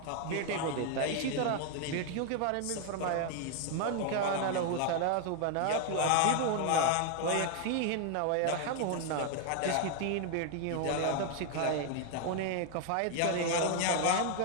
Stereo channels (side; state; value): both; different; correlation 0.00